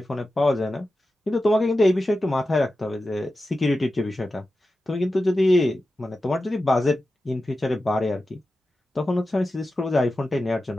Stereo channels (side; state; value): both; normal; correlation 0.92